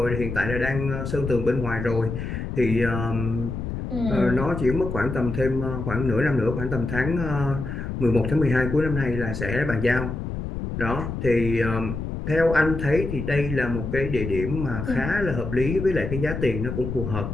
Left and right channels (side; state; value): left; noise; rumble, 5 dB below the sound